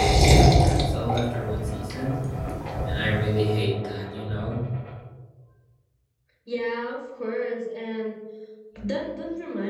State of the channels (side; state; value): both; identical; correlation 1.00